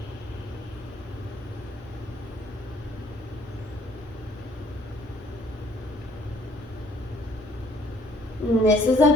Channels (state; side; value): normal; both; correlation 0.62